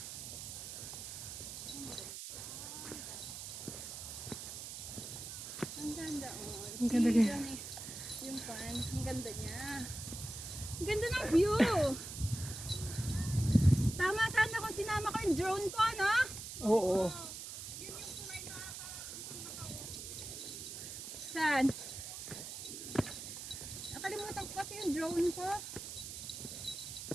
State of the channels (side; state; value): right; noise; hiss, 8 dB below the sound